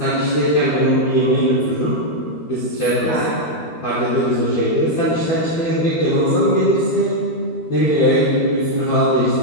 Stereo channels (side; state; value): right; late; 13 ms